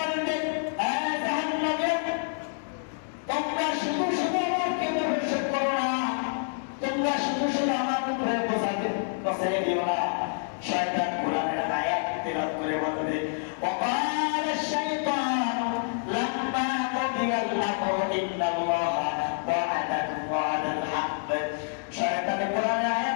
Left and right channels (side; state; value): right; silent; digital silence